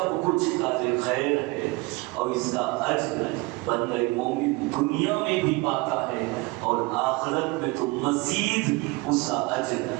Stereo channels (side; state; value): left; quieter; 24.3 dB